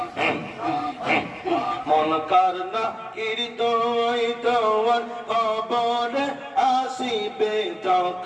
মনকার নাকির দোয়াই তোমার কবরে আসিবে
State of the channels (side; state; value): both; identical; correlation 1.00